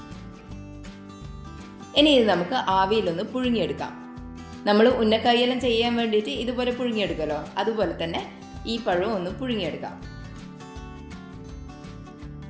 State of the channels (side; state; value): both; identical; correlation 1.00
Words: ഇനി ഇത് നമുക്ക് ആവിയിലൊന്ന് പുഴുങ്ങിയെടുക്കാം. നമ്മൾ ഉന്നക്കായെല്ലാം ചെയ്യാൻ വേണ്ടിയിട്ട് ഇതുപോലെ പുഴുങ്ങിയെടുക്കുമല്ലോ, അതുപോലെ തന്നെ ഈ പഴം ഒന്ന് പുഴുങ്ങിയെടുക്കാം.